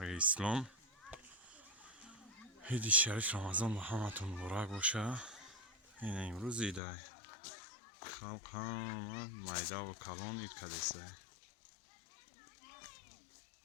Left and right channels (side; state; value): right; drops out; at 6.8 s